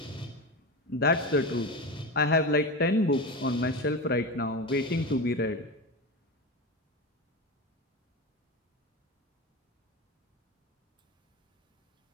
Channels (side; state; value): both; normal; correlation 0.23